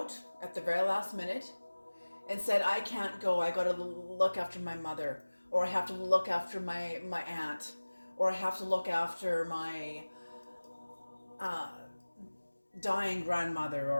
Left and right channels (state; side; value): inverted; both; correlation -1.00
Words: at the very last minute and said, I can't go. I got to look after my mother, or I have to look after my aunt, or I have to look after my dying grandmother,